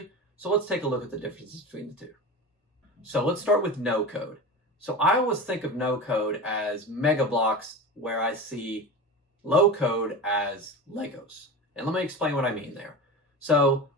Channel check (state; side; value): normal; both; correlation 0.29